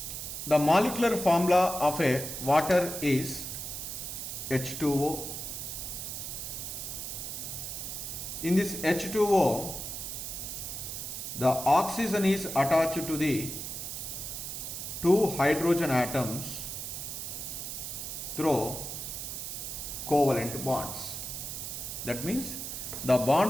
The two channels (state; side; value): noise; right; hiss, 6 dB below the sound